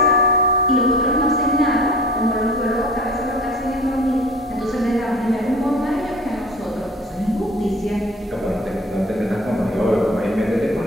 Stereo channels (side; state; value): both; normal; correlation 0.42